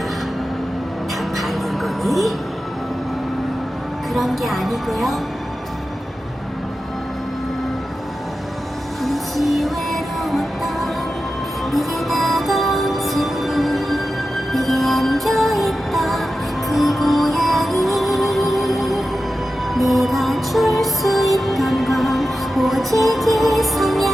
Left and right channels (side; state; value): both; normal; correlation 0.92